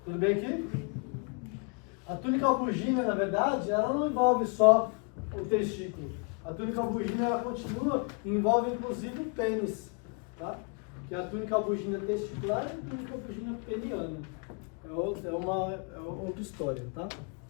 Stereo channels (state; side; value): quieter; right; 36.3 dB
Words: Tudo bem aqui? A túnica albugínea, na verdade, ela não envolve só o testículo. A túnica albugínea, ela continua, envolve inclusive o pênis, tá? Que a túnica albugínea testicular é a túnica albugínea peniana. É outra história, tá?